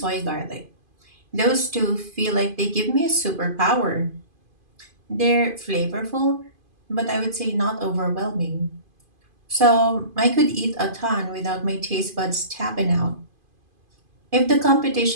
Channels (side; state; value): left; late; 2.5 ms